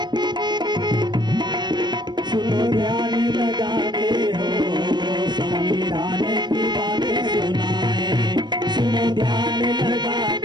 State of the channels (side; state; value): left; late; 0.21 ms